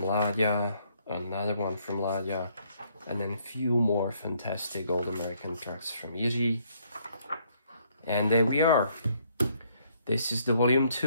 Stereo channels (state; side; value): inverted; both; correlation -0.68